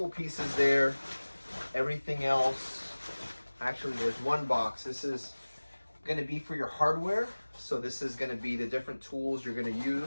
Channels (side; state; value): both; inverted; correlation -1.00